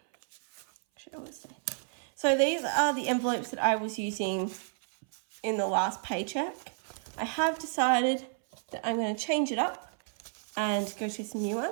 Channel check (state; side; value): silent; left; 57 dB below the other